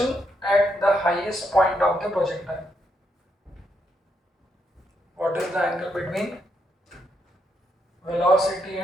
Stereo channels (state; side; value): normal; both; correlation 0.79